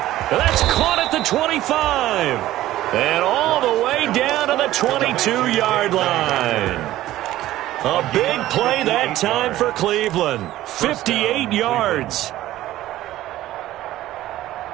That's caught at the 25. And all the way down to the 22-yard line. A big play that time for Cleveland. 58 yards.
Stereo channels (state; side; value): quieter; left; 14.9 dB